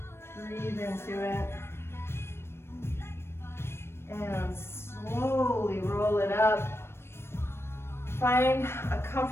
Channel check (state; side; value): late; right; 0.12 ms